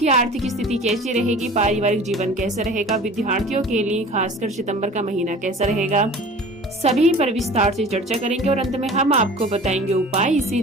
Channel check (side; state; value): both; normal; correlation 0.42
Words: आर्थिक स्थिति कैसी रहेगी। पारिवारिक जीवन कैसा रहेगा। विद्यार्थियों के लिए खासकर सितंबर का महीना कैसा रहेगा, सभी पर विस्तार से चर्चा करेंगे और अंत में हम आपको बताएंगे उपाय,